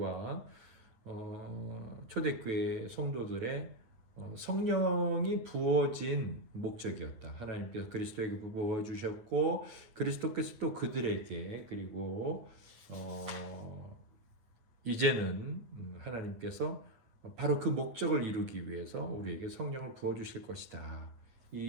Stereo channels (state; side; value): late; left; 9.1 ms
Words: 초대교회 성도들의 성령이 부어진 목적이었다. 하나님께서 그리스도에게 부어주셨고 그리스도께서 또 그들에게, 그리고 이제는 하나님께서 바로 그 목적을 이루기 위해서 우리에게 성령을 부어주실 것이다.